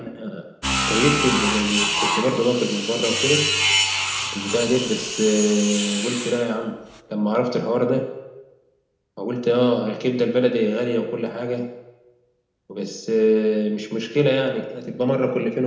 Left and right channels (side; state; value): both; identical; correlation 1.00